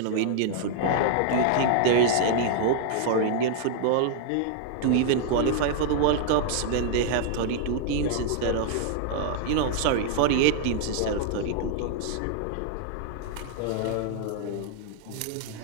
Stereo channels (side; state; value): both; different; correlation -0.01